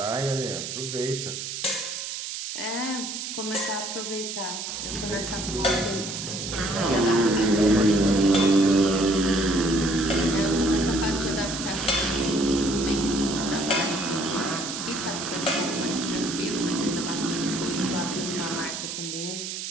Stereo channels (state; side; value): noise; right; hiss, 6 dB below the sound